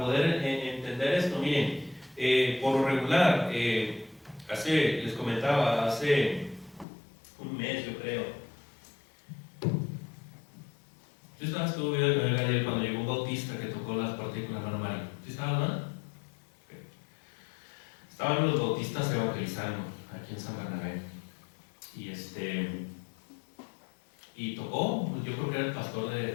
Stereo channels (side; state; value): right; drops out; at 6.9 s